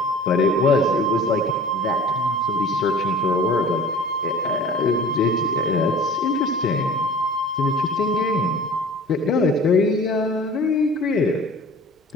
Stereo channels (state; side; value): normal; both; correlation 0.43